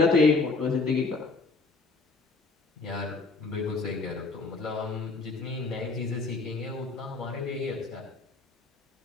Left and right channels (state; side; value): quieter; right; 3.9 dB